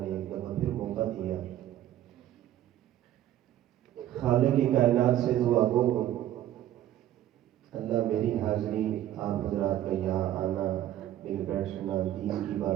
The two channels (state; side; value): quieter; left; 12.6 dB